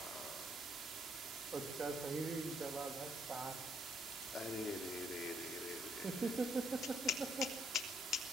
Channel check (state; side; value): normal; both; correlation 0.71